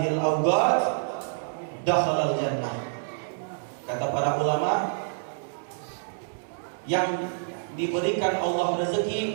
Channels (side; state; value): left; silent; digital silence